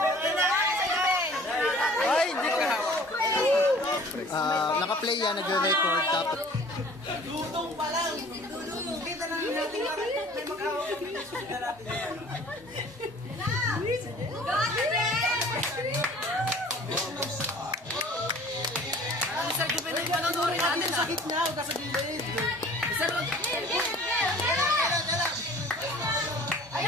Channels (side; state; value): both; normal; correlation 0.49